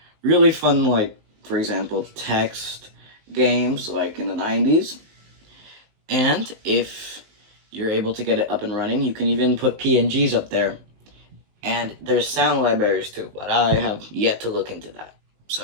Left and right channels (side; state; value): left; late; 19 ms